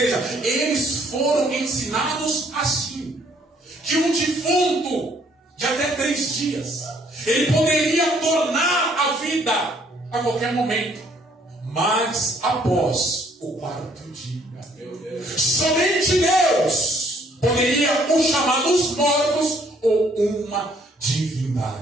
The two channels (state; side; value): normal; both; correlation 0.64